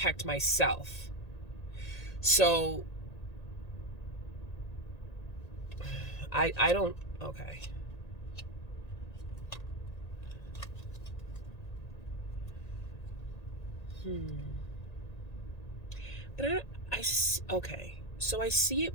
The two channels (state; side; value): late; right; 1.8 ms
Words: So I don't, okay. But okay. So I see it